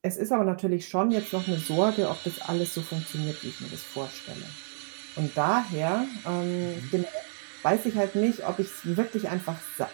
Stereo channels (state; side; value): silent; left; digital silence